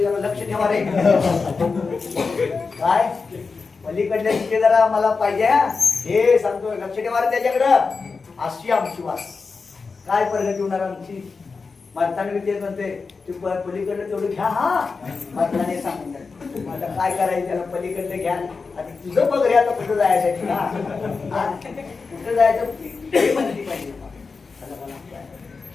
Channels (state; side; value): quieter; right; 4.6 dB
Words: जरा लक्ष ठेवा रे. काय पलीकडल्याची जरा आम्हाला पाहिजे, हे सांगतो, लक्ष ठेवा रे त्याच्याकडं. अशी आमची वास. काय प्रगती होणार आमची. मारताना तेच म्हणते तू पलीकडलं तेवढं घ्या. मारताना सांगून आता काय करायचं, त्याला पलीकडलं घ्या. आता तुझं बघ रे, आता कुठं जायचं कुठं जायचं हे म्हणली पाहिजे.